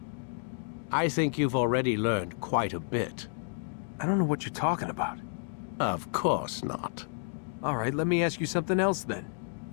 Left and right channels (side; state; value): right; silent; digital silence